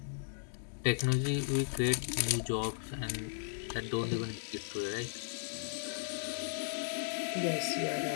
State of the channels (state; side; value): silent; right; digital silence